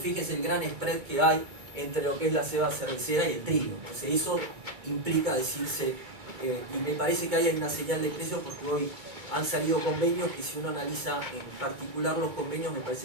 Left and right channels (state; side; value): late; left; 2.3 ms